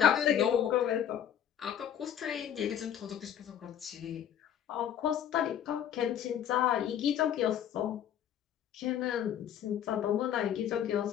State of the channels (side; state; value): right; quieter; 9.8 dB